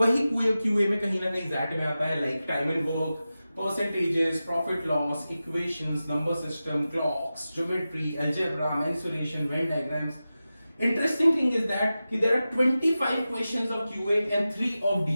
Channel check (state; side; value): inverted; both; correlation -0.94